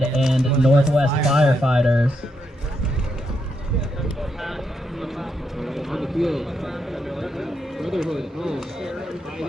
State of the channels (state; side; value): normal; both; correlation 0.81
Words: and Northwest Firefighters. On the field, Brotherhood home,